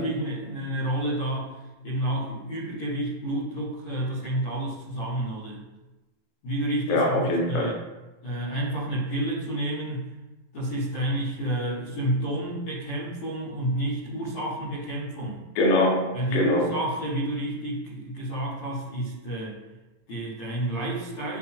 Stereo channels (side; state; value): right; late; 18 ms